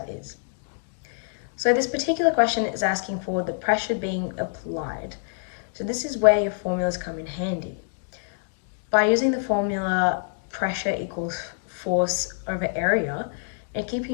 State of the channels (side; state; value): right; silent; digital silence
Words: is. So this particular question is asking for the pressure being applied. So this is where your formulas come in handy. By using the formula pressure equals force over area, and